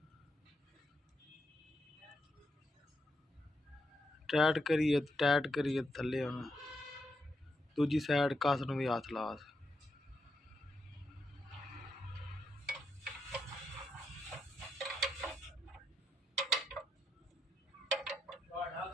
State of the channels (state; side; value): normal; both; correlation 0.82